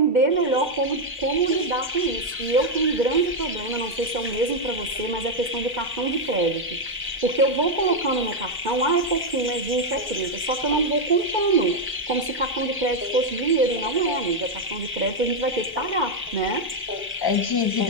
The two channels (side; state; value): both; normal; correlation 0.02